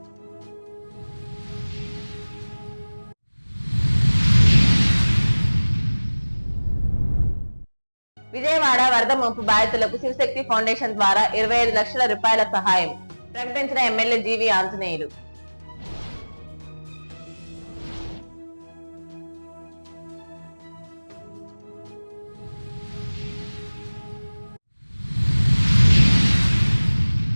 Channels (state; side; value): inverted; both; correlation -1.00